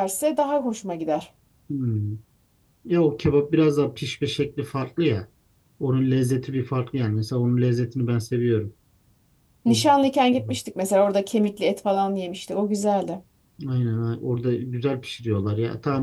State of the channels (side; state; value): both; identical; correlation 1.00